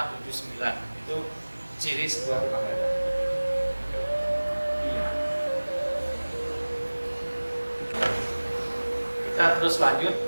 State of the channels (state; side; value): inverted; both; correlation -1.00